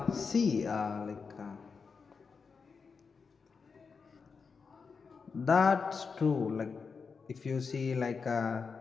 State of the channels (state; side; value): quieter; right; 5.3 dB